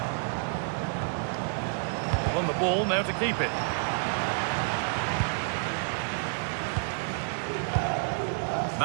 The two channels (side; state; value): left; silent; 58 dB below the other